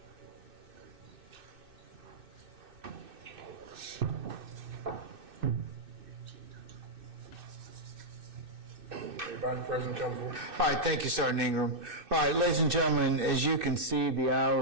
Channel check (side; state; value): left; late; 2.6 ms